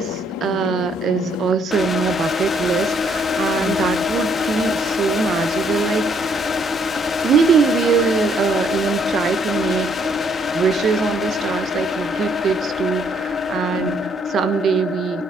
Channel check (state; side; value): normal; both; correlation 0.68